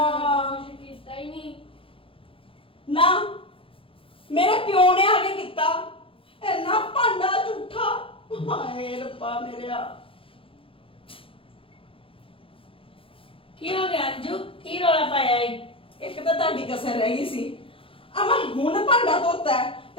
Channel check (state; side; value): late; right; 0.26 ms